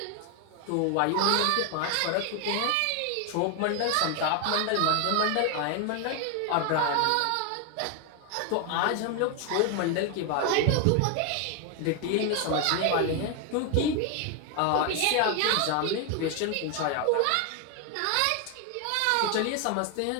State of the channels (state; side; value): different; both; correlation 0.01